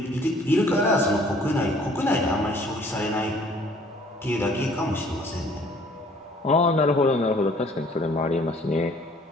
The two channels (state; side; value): normal; both; correlation 0.57